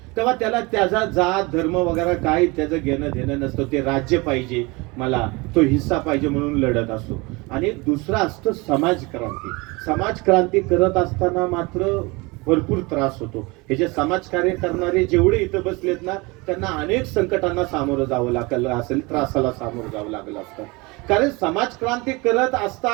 तेव्हा त्याला त्याचा जात धर्म वगैरे काही त्याचं घेणं देणं नसतं. ते राज्य पाहिजे मला, तो हिस्सा पाहिजे म्हणून लढत असतो. आणि दुसरा असतं समाज क्रांती. समाज क्रांती करत असताना मात्र भरपूर त्रास होतो. हे जे समाज कार्य करणारे जेवढे इथं बसलेत ना, त्यांना अनेक संकटांना सामोरं जावं लागलं असेल, त्रासाला सामोरं जावं लागलं असतं. कारण समाज क्रांती करत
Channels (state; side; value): quieter; left; 25.5 dB